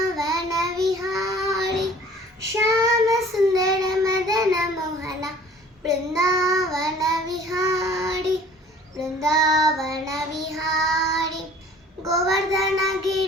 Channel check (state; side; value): normal; both; correlation 0.50